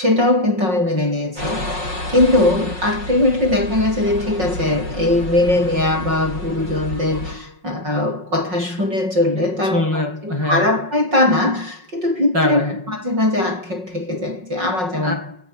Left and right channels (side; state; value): left; late; 5.5 ms